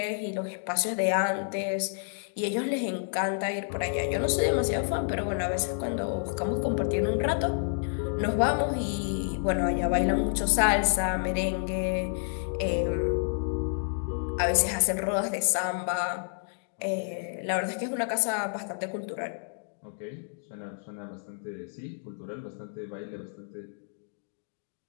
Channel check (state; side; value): silent; right; digital silence